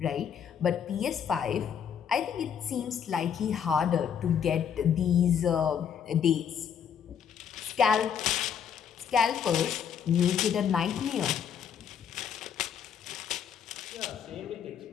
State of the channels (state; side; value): quieter; right; 8.0 dB